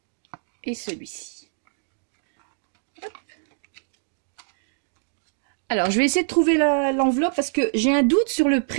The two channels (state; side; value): silent; left; digital silence